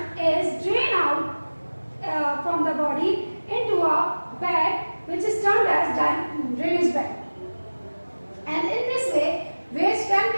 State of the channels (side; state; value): both; inverted; correlation -1.00